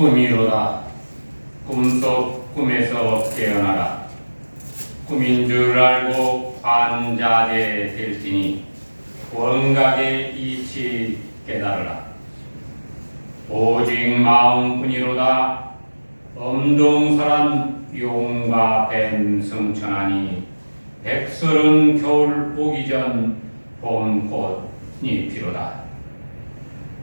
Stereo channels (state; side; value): inverted; both; correlation -1.00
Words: 꿈속 꿈에서 깨어나라. 꿈인 줄 알고 관자되 될지니 원각의 이치 깨달으라. 오직 마음뿐이로다. 엄동설한 용과 뱀 승천하니 백설은 겨울 오기 전 봄꽃이 피로다.